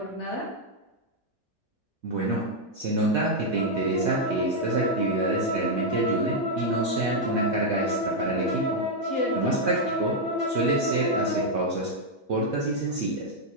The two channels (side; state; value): both; normal; correlation -0.01